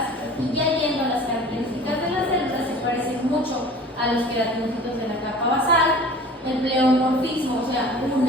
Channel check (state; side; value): normal; both; correlation 0.43